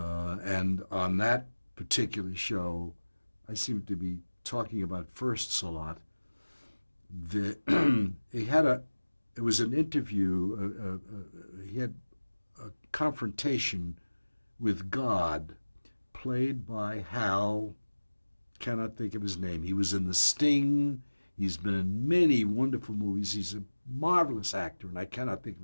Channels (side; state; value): both; inverted; correlation -1.00